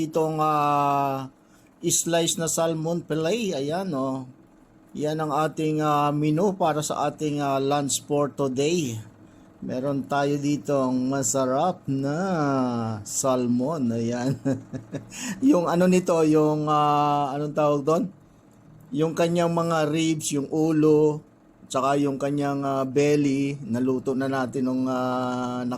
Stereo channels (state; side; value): identical; both; correlation 1.00